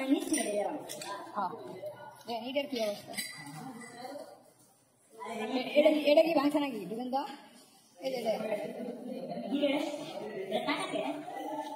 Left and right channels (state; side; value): identical; both; correlation 1.00